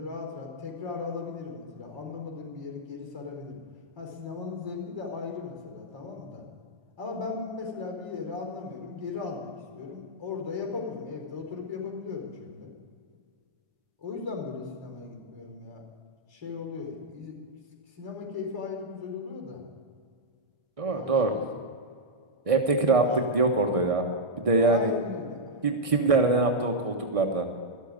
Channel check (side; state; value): left; late; 1.6 ms